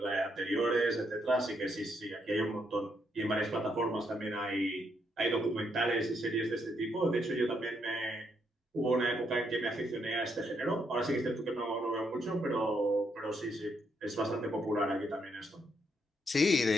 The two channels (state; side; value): normal; both; correlation 0.76